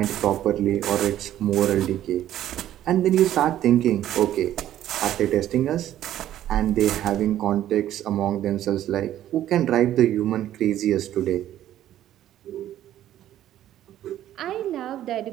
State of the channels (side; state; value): left; quieter; 12.3 dB